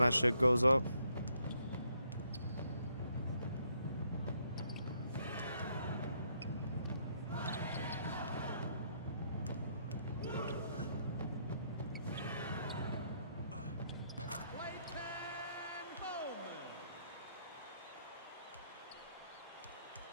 shit goes up.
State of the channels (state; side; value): inverted; both; correlation -0.72